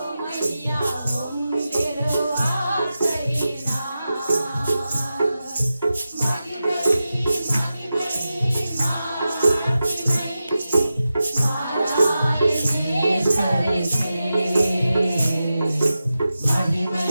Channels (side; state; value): both; inverted; correlation -0.92